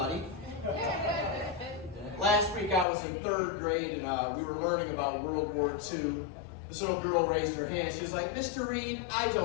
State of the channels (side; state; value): right; drops out; at 2.9 s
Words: Last week I was in 3rd grade and we were learning about World War II. This little girl raised her hand. She was like, Mr. Reed, I